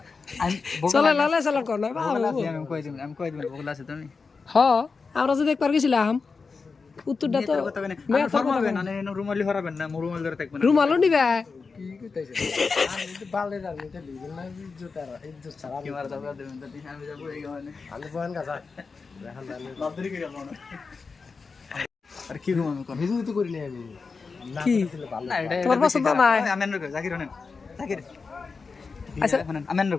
আমি চলে লালে চালান কর না আমি কই দিবেন বগলা আছে তুমি হ আমরা যদি একবার গেছিলাম উত্তরটা তো মেয়ে তো ফরমাবেন না রুমালি হরাবেন না রুমাল ধরে থাকবেন রুমালও নিবে কি কইতাছে আমি তো বালে রানি তে লিবেন না জুতার ইজ্জত ছাড়া কি মারা দাও দেবেন তো আমি যাব এই গানে আমি বয়ান গাছা এখন জানি বাদরি করে গেল না আর কি ঘুম আমি কর ভিডিও তো করি নাই আমি না কি? করলে ভালো না এটা তোমার পছন্দ নাই আমেন রকো জাকির হনেন জাকির আচ্ছা। আচ্ছা আমেন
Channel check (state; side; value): quieter; right; 4.7 dB